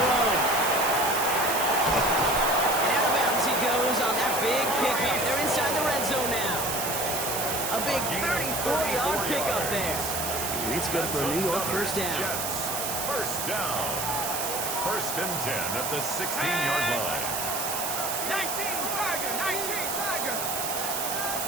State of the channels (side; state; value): right; noise; hiss, 2 dB below the sound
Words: And out of bounds he goes on that big pickup. They're inside the red zone now. A big 34-yard pickup there. And it's good for a New York 1st down. 1st down. 1st and 10 at the 16-yard line. 19 Tiger! 19 Tiger!